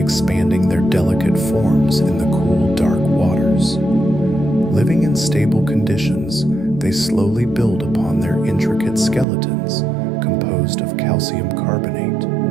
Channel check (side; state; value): left; drops out; at 9.2 s